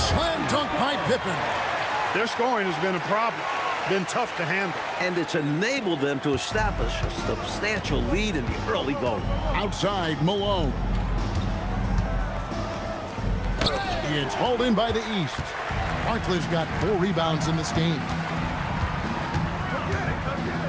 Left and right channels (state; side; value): identical; both; correlation 1.00